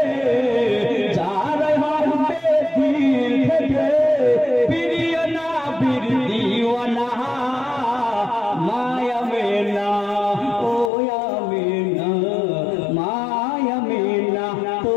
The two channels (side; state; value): right; drops out; at 10.9 s